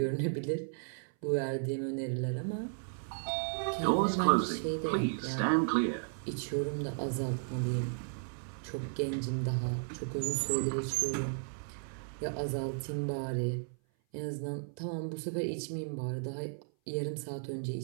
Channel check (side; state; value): left; silent; 55 dB below the other